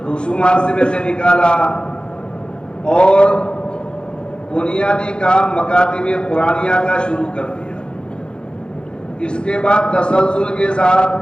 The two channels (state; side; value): late; right; 0.051 ms